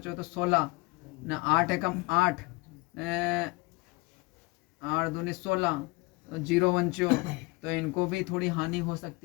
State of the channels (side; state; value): right; quieter; 25.6 dB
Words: हो तो 16 ने 8 एकम 8 ने 8 दूनी 16, तो 0 वंचो, तो इनको भी थोड़ी हानि हो